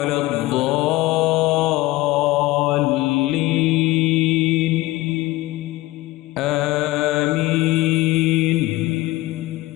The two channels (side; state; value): right; quieter; 18.6 dB